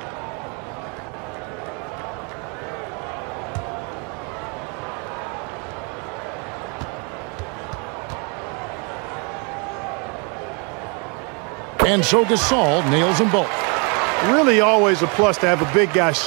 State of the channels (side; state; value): left; quieter; 34.0 dB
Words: And so Gasol nails them both. Really always a plus to have a big guy